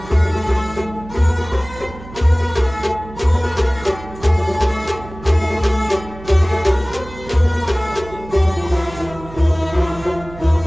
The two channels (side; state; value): right; noise; hum, 16 dB below the sound